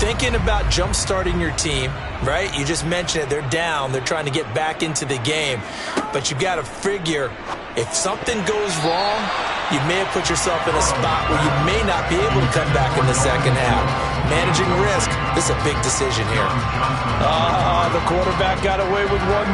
about jump-starting your team, right? You just mentioned it. They're down. They're trying to get back into the game. But you got to figure if something goes wrong, you may have put yourself in a spot where you may not be able to come back in the second half. Managing risk, this is a big decision here. The quarterback got away with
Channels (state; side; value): identical; both; correlation 1.00